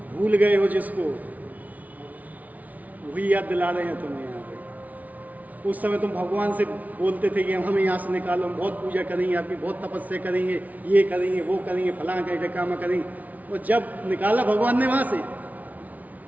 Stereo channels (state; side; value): late; left; 0.073 ms